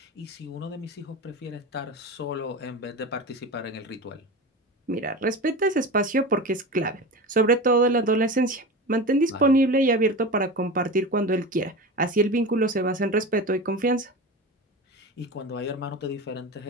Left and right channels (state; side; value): normal; both; correlation 0.28